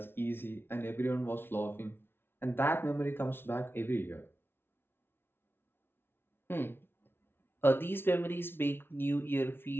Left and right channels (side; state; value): right; late; 0.11 ms